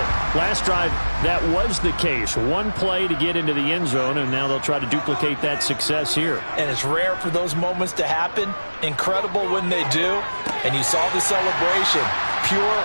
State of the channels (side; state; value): both; inverted; correlation -1.00